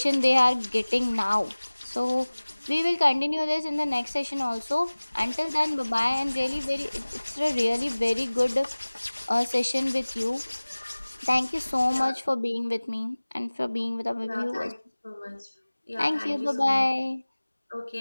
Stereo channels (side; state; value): both; inverted; correlation -1.00